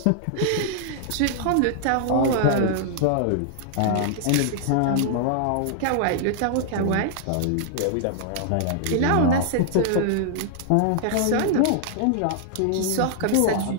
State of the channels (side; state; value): both; different; correlation -0.01